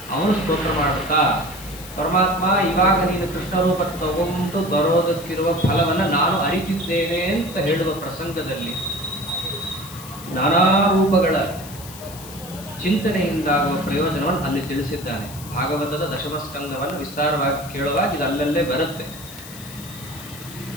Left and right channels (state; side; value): noise; left; hiss, 15 dB below the sound